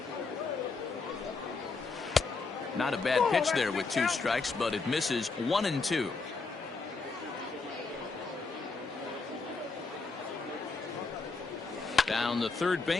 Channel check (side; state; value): right; quieter; 4.2 dB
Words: Not a bad pitch there with 2 strikes, but it misses 1-2. Down the third